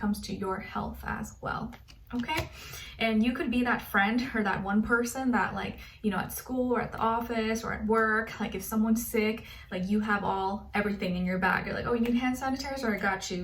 to your health as well. Okay, and you could be that friend or that one person that at school or at the office or at work, like if someone's sick, like you have everything in your bag. You're like, oh, you need hand sanitizer? I got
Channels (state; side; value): identical; both; correlation 1.00